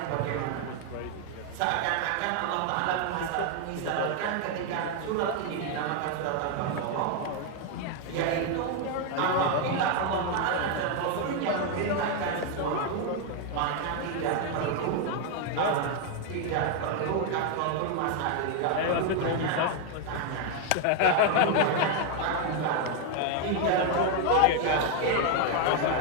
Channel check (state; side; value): different; both; correlation 0.01